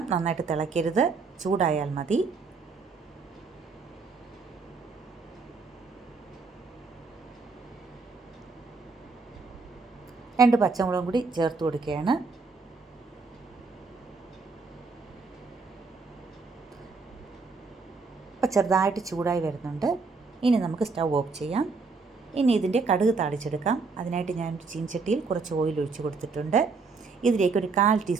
നന്നായിട്ട് തിളക്കരുത്, ചൂടായാൽ മതി. രണ്ട് പച്ചമുളകും കൂടി ചേർത്ത് കൊടുക്കുകയാണ്. അപ്പോൾ ചെറുതായിട്ട് ചൂടായി വരുന്നുണ്ട്. ഇനി നമുക്ക് സ്റ്റൗ ഓഫ് ചെയ്യാം. ഇനി ഇതിൻ്റെ കടുക് താളിച്ചെടുക്കാം. അതിനായിട്ട് ഞാൻ ചീനച്ചട്ടിയിൽ കുറച്ച് ഓയിൽ ഒഴിച്ച് കൊടുത്തിട്ടുണ്ട്. ഇതിലേക്ക് 1/4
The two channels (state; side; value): quieter; left; 4.4 dB